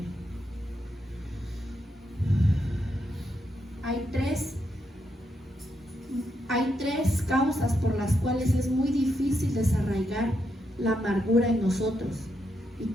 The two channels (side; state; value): both; normal; correlation 0.81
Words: Hay tres causas por las cuales es muy difícil desarraigar la amargura en nosotros, y